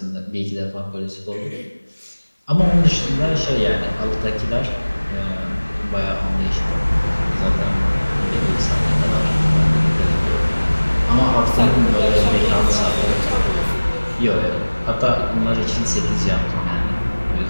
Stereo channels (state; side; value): inverted; both; correlation -1.00